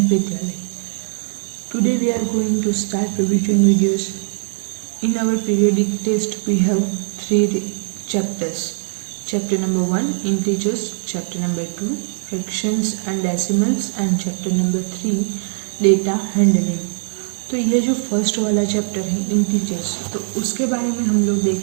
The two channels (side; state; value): left; silent; 66 dB below the other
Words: Vidyalaya. Today we are going to start revision videos. In our periodic test we have 3 chapters. Chapter number 1 integers, chapter number 2 fractions and decimals and chapter number 3 data handling. तो ये जो first वाला chapter है integers, तो उसके बारे में हम लोग